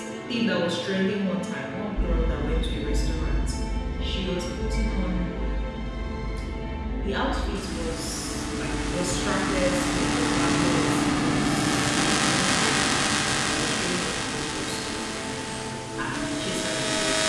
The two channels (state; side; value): identical; both; correlation 1.00